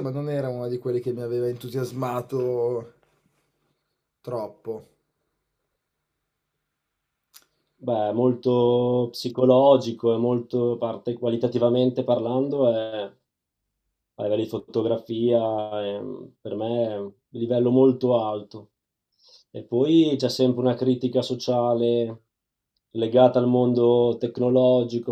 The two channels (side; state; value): both; identical; correlation 1.00